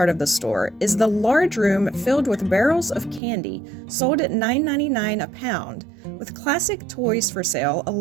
of the store is the large room filled with barrels of candy sold at $9.99 a pound, with classic toys for sale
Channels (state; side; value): drops out; left; at 3.2 s